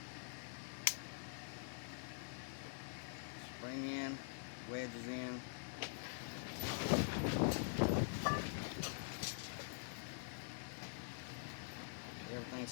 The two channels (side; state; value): right; silent; digital silence